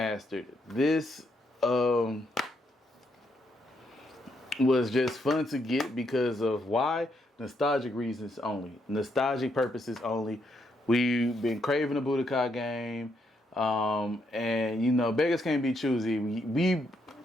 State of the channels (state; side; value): normal; both; correlation 0.76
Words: This was just fun to get because of why? Nostalgic reasons only. Nostalgic purposes only. We've been craving a Budokai game. And, you know, beggars can't be choosy. We